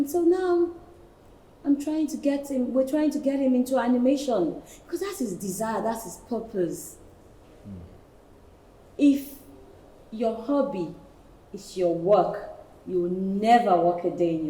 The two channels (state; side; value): identical; both; correlation 1.00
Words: so now, we're trying to get him into animation because that's his desire, that's his purpose. If your hobby is your work, you will never work a day in